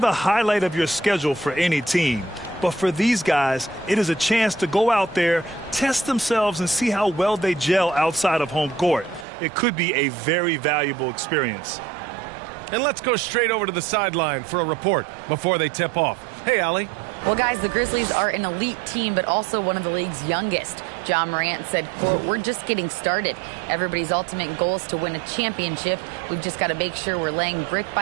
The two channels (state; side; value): drops out; left; at 9.2 s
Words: highlight of your schedule for any team. But for these guys, it is a chance to go out there, test themselves, and see how well they gel outside of home court. It could be a very valuable experience. And let's go straight over to the sideline for a report before they tip off. Hey, Allie. Well, guys, the Grizzlies are an elite team, but also one of the league's youngest. John Morant said, quote, "We're just getting started. Everybody's ultimate goal is to win a championship. We've just got to make sure we're laying brick